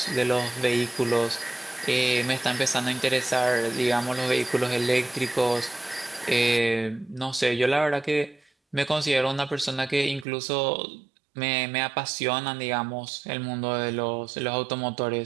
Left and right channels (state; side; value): drops out; left; at 10.2 s